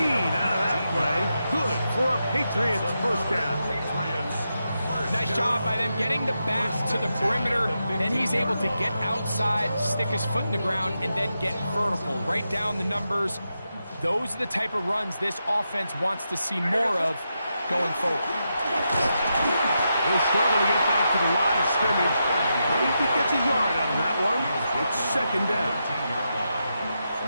out of that play. Good for a Patriots first down. Nice job by them getting the back to the perimeter. Then he's able to get outside, stick his foot in the ground, and then get vertical. Right down the numbers. Those are the type of runs this offense wants to see more of going forward. He'll struggle to get back to the line of scrimmage. Maybe gets a yard out of that one. It's 2nd down.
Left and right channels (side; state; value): both; inverted; correlation -0.86